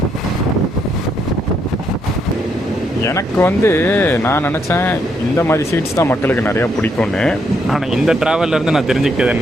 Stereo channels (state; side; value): normal; both; correlation 0.75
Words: எனக்கு வந்து நான் நினச்சேன் இந்த மாதிரி சீட்ஸ் தான் மக்களுக்கு நிறையா பிடிக்கும்னு. ஆனால் இந்த ட்ராவல்லேருந்து நான் தெரிஞ்சுக்கிட்டது